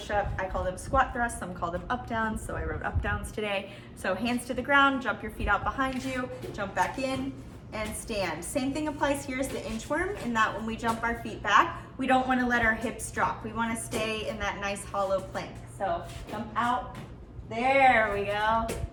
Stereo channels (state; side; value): identical; both; correlation 1.00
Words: I call them squat thrusts, some call them up downs, so I wrote up downs today. So hands to the ground, jump your feet out behind you, jump back in, and stand. Same thing applies here as the inchworm, in that when we jump our feet back, we don't want to let our hips drop. We want to stay in that nice hollow plank. So jump out, there we go,